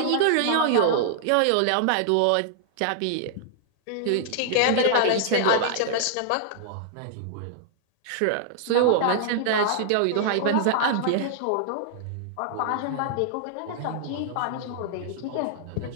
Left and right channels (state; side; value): different; both; correlation -0.01